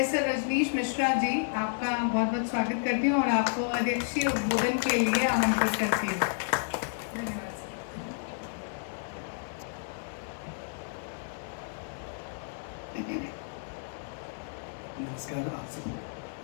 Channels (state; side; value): silent; right; 57 dB below the other